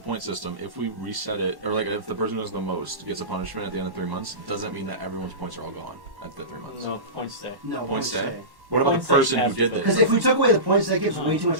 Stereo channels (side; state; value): left; late; 1.1 ms